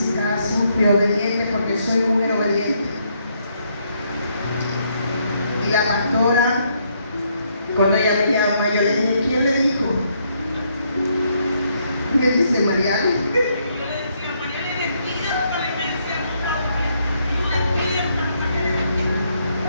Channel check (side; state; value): both; inverted; correlation -0.73